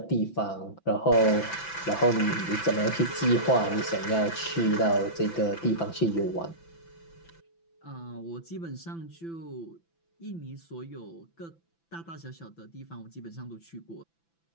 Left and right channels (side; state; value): right; late; 5.9 ms